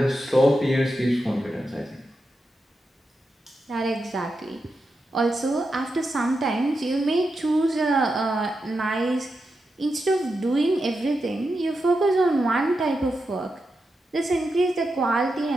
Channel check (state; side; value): normal; both; correlation 0.88